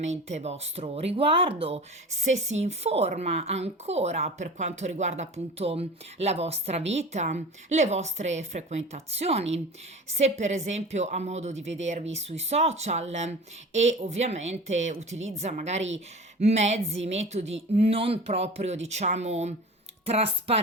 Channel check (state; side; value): normal; both; correlation 0.36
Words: vostro riguardo, se si informa ancora per quanto riguarda appunto la vostra vita, le vostre frequentazioni, se per esempio ha modo di vedervi sui social e ovviamente utilizza magari mezzi, metodi non proprio diciamo